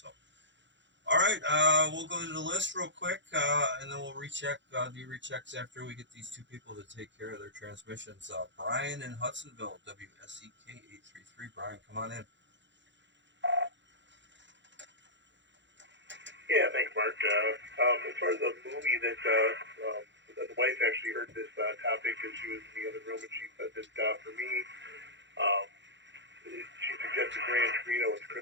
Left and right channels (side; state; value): left; late; 0.53 ms